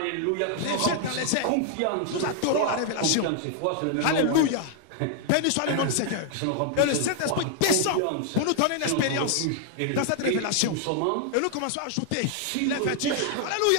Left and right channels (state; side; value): different; both; correlation 0.00